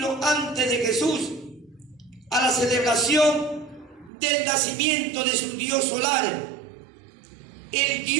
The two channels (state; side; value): drops out; left; at 4.1 s